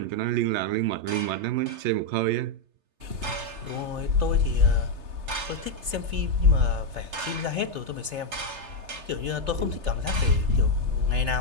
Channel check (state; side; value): late; left; 3.3 ms